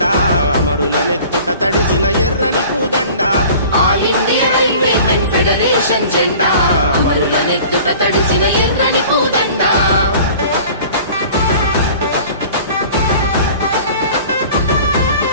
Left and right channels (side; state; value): both; inverted; correlation -0.45